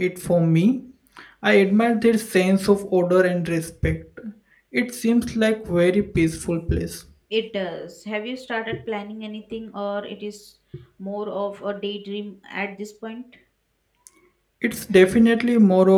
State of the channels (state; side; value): identical; both; correlation 1.00